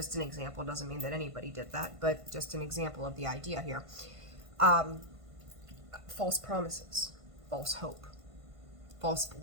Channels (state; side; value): late; left; 1.5 ms